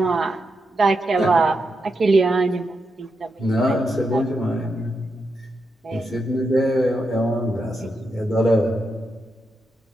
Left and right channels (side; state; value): both; normal; correlation 0.85